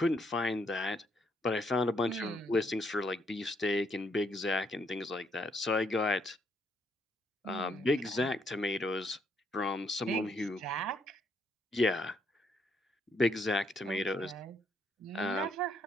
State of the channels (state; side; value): normal; both; correlation 0.73